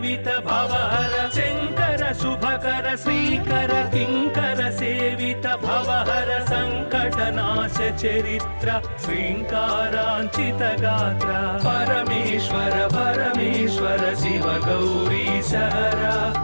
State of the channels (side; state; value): both; inverted; correlation -1.00